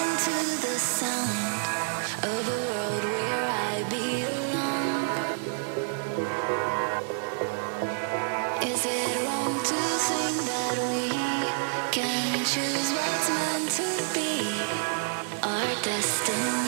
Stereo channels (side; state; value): left; silent; digital silence